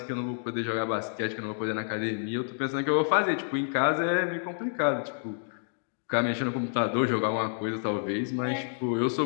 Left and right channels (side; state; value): right; silent; digital silence